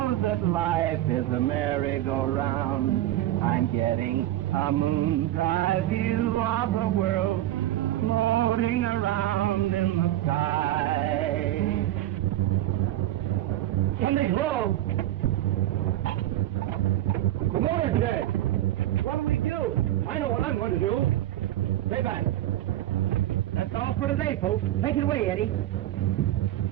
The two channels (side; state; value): left; quieter; 14.2 dB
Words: that life is a merry-go-round. I'm getting a moon's eye view of the world floating around in the sky. Something's wrong. Come on, there. What do we do? I know what I'm going to do. Stay back. That's all for today, folks. Take it away, Eddie.